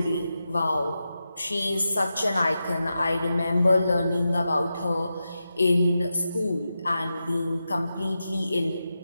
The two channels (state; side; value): inverted; both; correlation -0.90